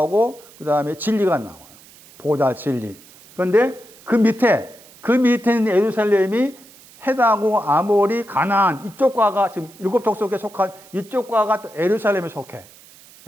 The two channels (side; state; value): right; noise; hiss, 24 dB below the sound